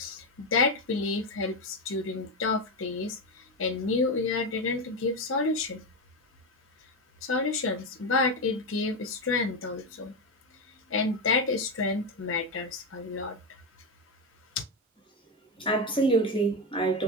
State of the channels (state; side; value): normal; both; correlation 0.11